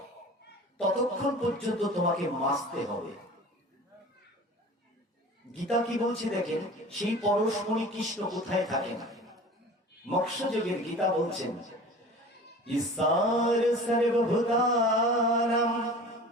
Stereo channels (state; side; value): normal; both; correlation 0.40